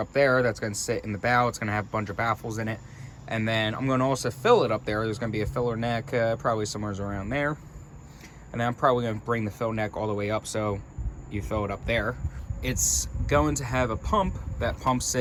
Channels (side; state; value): both; identical; correlation 1.00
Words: up there that's going to sit in the bow. It's going to have a bunch of baffles in it. And then I'm going to also fill it up there. There's going to be a filler neck, probably somewhere around there. And then I'm probably going to bring the fill neck all the way up so you fill it up there. It's going to have a pump that pumps